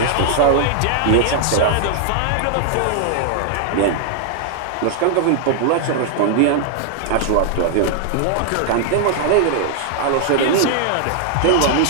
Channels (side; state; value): both; different; correlation -0.01